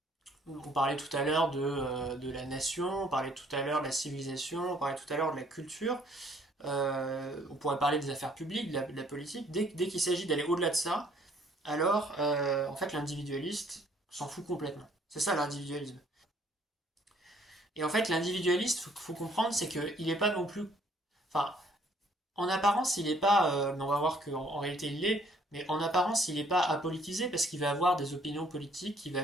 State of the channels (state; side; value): normal; both; correlation 0.62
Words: on parlait tout à l'heure de la nation, on parlait tout à l'heure de la civilisation, on parlait tout à l'heure de la culture, on pourrait parler des affaires publiques, de la politique. Dès qu'il s'agit d'aller au-delà de ça, alors en fait l'individualiste s'en fout complètement. C'est ça l'individualisme. Et en fait l'individualiste, faut comprendre, c'est qu'il n'est pas non plus... Enfin, en apparence, il n'est pas... mais on va voir qu'en réalité il l'est, mais en apparence, il n'est pas apolitisé parce qu'il va avoir des opinions politiques qu'il va